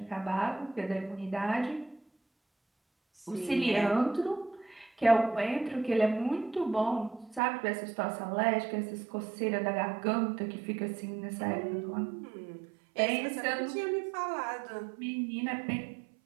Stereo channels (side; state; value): left; drops out; at 7.4 s